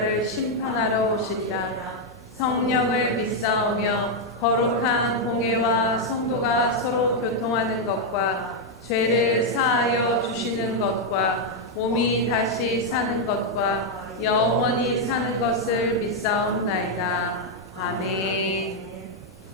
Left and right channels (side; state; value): both; normal; correlation 0.00